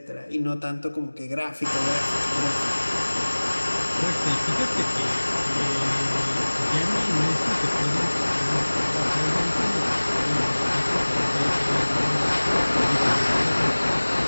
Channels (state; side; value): inverted; both; correlation -1.00